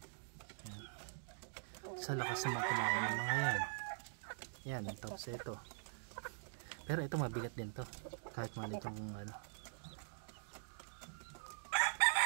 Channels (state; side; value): silent; left; digital silence